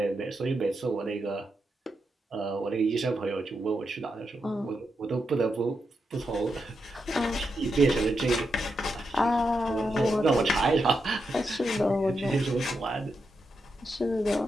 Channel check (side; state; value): both; normal; correlation 0.85